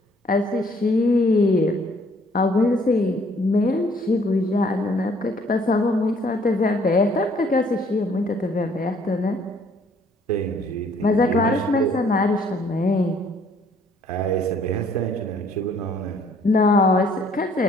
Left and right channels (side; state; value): both; normal; correlation 0.62